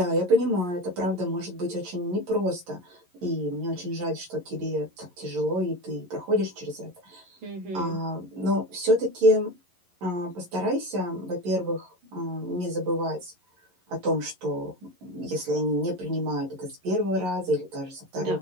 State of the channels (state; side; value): late; left; 11 ms